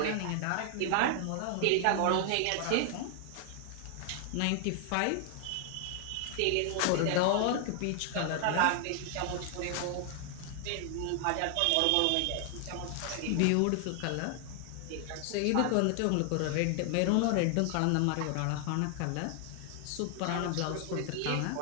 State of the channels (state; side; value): different; both; correlation 0.00